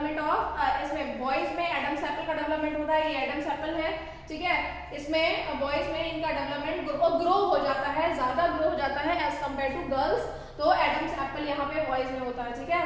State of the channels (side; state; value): both; identical; correlation 1.00